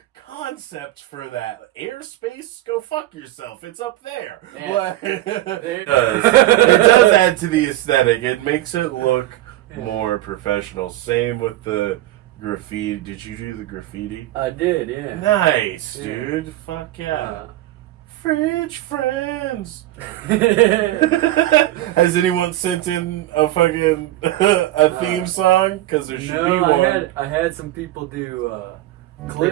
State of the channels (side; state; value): left; quieter; 15.8 dB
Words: concept for that. Airspace, go fuck yourself. It's up there. Yeah. Like, it does add to the aesthetic. It makes it look more professional. Same with the graffiti. Did you do the graffiti? I did, yeah. Nice, dude. Fuck yeah. Fridge friends. Has anyone sent in a fucking a theme song? Because there should be one. I had some people do